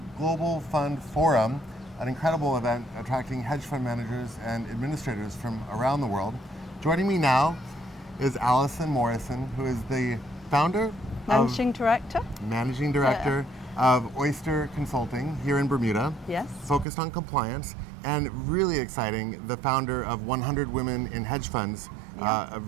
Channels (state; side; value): drops out; left; at 16.9 s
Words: Global Fund Forum, an incredible event attracting hedge fund managers and administrators from around the world. Joining me now is Alison Morrison, who is the founder, Managing Director of Oyster Consulting here in Bermuda. Yes. Focused on compliance, and really exciting, the founder of 100 Women in Hedge Funds, a